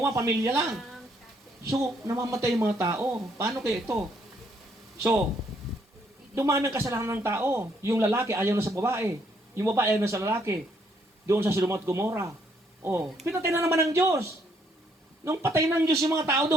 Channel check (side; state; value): both; normal; correlation 0.70